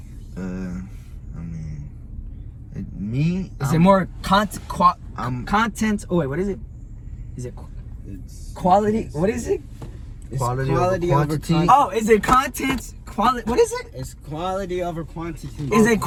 I mean, me. Is it more content? Oh wait, what is it? Is it it's quality? What is it? It's Quality quality over over quantity. quantity. Oh, is it content? Quality? What is it? It's quality over quantity. Is it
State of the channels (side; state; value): both; identical; correlation 1.00